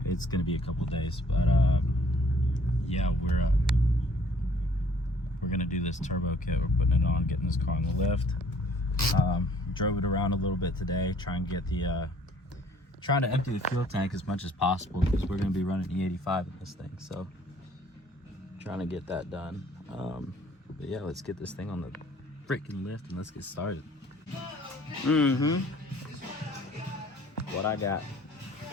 It's gonna be a couple days, but yeah, we're gonna do this turbo kit. We're putting it on, getting this car on the lift. Drove it around a little bit today, trying to empty the fuel tank as much as possible because we're gonna be running E85 in this thing. So trying to get that done. But yeah, let's get this thing on the freaking lift and let's get started. What I got?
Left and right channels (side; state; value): both; normal; correlation 0.58